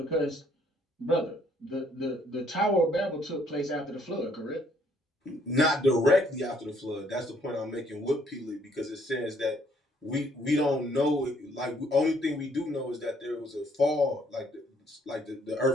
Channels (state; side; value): normal; both; correlation 0.65